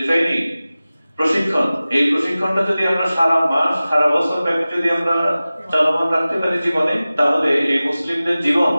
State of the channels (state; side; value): inverted; both; correlation -0.97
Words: ট্রেনিং, প্রশিক্ষণ, এই প্রশিক্ষণটা যদি আমরা সারা মাস, সারা বছর ব্যাপী যদি আমরা চলমান রাখতে পারি জীবনে, তাহলে এই মুসলিমদের জীবন